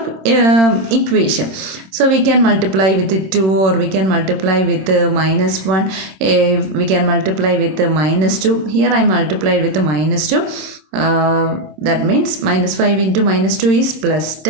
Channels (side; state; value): left; late; 26 ms